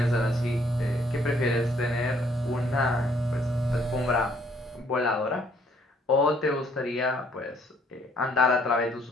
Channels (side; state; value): both; normal; correlation 0.65